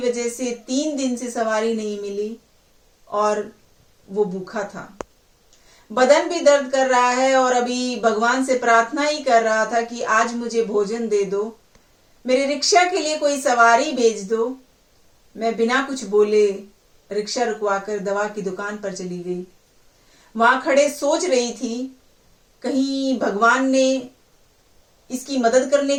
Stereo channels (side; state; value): both; identical; correlation 1.00